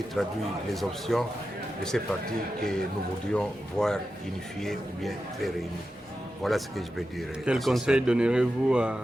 traduit les options de ces partis que nous voudrions voir unifiés ou bien très réunis. Voilà ce que je peux dire. Quel conseil donnerez-vous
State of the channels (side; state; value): both; normal; correlation 0.91